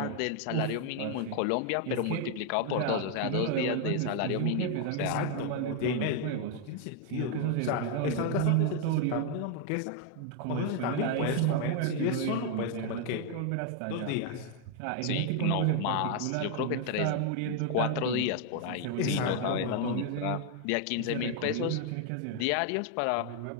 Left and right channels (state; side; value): different; both; correlation 0.00